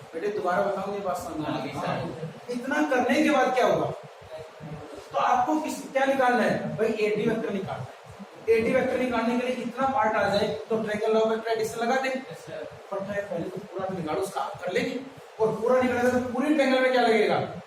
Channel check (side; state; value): both; identical; correlation 1.00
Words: बेटे? दोबारा बताऊं ये बात समझ में आ गई? इतना करने के बाद क्या होगा, तो आपको क्या निकालना है भाई एडी वेक्टर निकालना है। एडी वेक्टर निकालने के लिए इतना पार्ट आ जाए तो ट्रायंगल लॉ वेक्टर एडिशन लगा दे, पर पहले तो पूरा निकालो, उसका आप कर लेंगे, और पूरा निकालेगा तो पूरी ट्रायंगल में क्या लगेगा